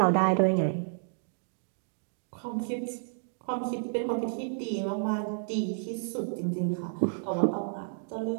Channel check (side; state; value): left; silent; digital silence